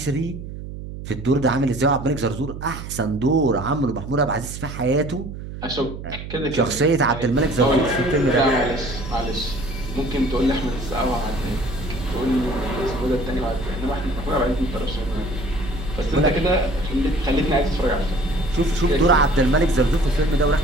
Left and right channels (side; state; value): right; noise; hum, 10 dB below the sound